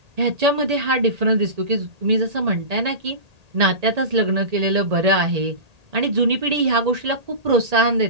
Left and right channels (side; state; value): left; late; 1.8 ms